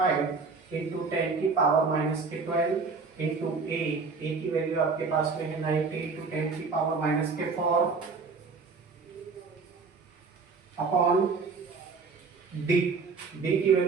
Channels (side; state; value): left; quieter; 4.6 dB